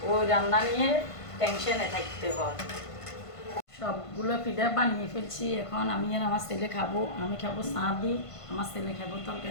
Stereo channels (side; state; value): right; late; 1.5 ms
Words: ওই রান্না নিয়ে টেনশনে থাকতে হয়। সবগুলো পিঠা বানিয়ে ফেলছি, এখন আমি আর আমার ছেলে খাবো। আমি খাবো চা দিই, আমার ছেলে খাবো